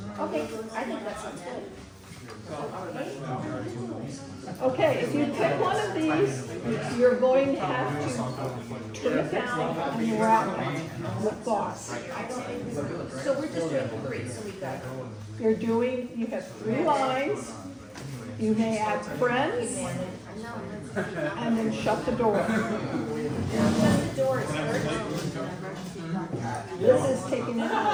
Okay, I think that sounds good. Okay, if you pick one of these, you're going to have to turn it down and wrap it with gauze. So we're just doing 3, so we got. You have 3 lines. You may add friends and then shut the door. This is taking it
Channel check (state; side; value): identical; both; correlation 1.00